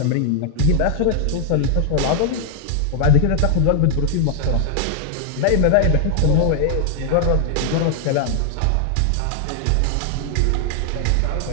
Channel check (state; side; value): different; both; correlation 0.00